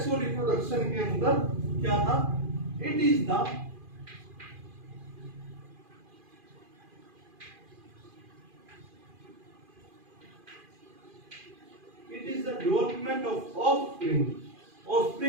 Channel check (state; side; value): late; left; 2.4 ms